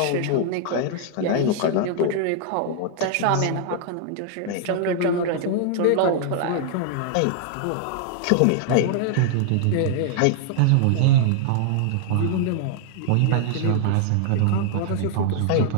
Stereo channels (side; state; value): both; different; correlation -0.01